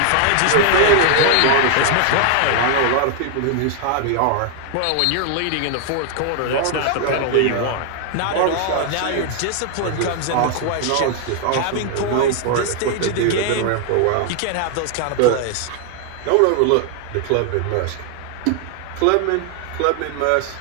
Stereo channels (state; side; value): different; both; correlation 0.00